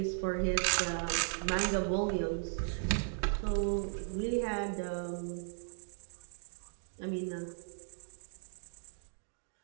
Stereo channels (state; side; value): silent; left; digital silence